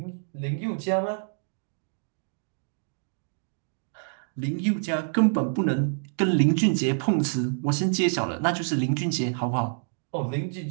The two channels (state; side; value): silent; left; digital silence